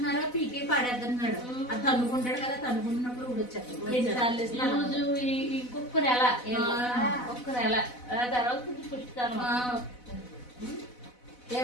పీకే పడేస్తున్నాడు. అది తన్నుకుంటాడు కదా, తన్నుకుంటున్నప్పుడు ఊడొచ్చాడు. ఇంకొక నెల ఒక్క నెల తర్వాత పుష్టిస్తాను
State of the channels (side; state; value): right; late; 4.0 ms